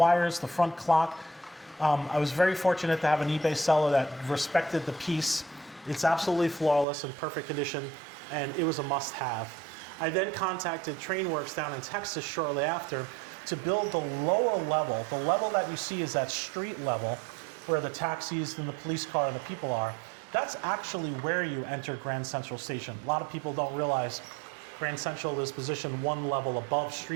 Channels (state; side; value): drops out; left; at 6.9 s